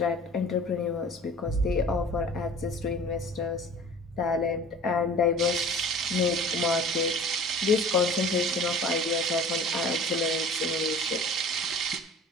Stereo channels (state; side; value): normal; both; correlation 0.44